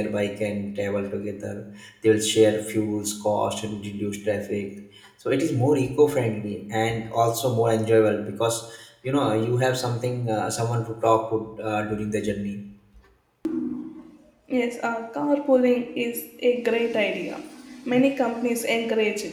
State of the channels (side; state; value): both; identical; correlation 1.00